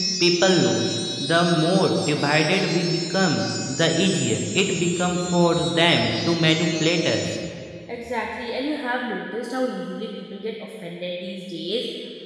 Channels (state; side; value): identical; both; correlation 1.00